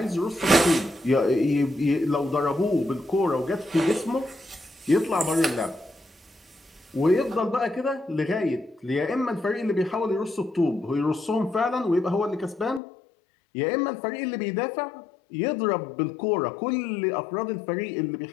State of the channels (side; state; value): right; drops out; at 12.8 s